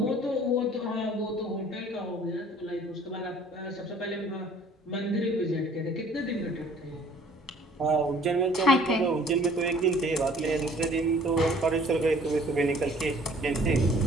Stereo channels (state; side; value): normal; both; correlation 0.54